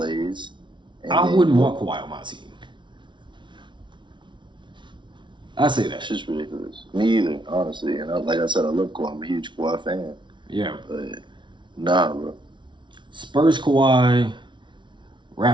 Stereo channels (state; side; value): late; left; 0.23 ms